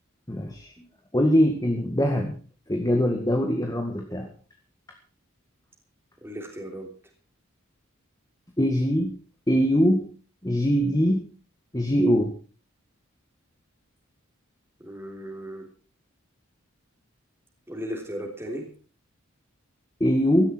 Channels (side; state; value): both; normal; correlation 0.86